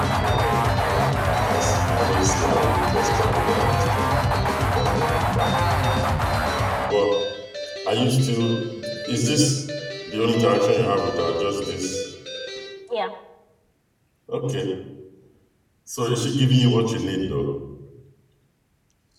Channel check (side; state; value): both; identical; correlation 1.00